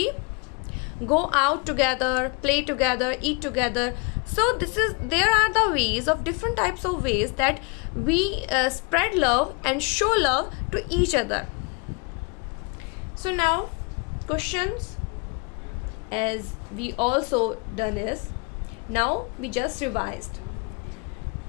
go out together, play together, eat together. So there are the ways of different types of ways that we spread love and show love to each other. So now questions, as we also done is, now we just revised.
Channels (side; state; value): right; quieter; 31.7 dB